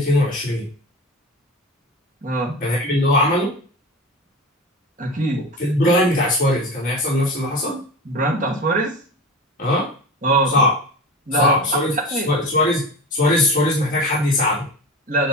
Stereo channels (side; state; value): both; normal; correlation 0.29